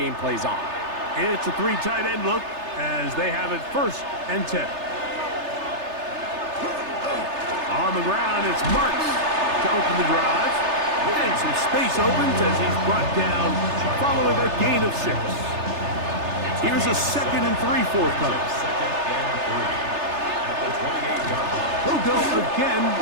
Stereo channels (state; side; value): late; left; 3.3 ms